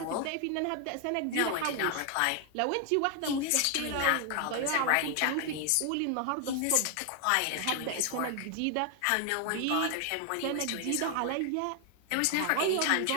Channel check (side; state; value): both; different; correlation 0.00